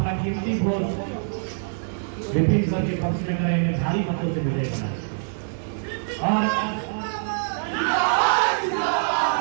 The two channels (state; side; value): silent; left; digital silence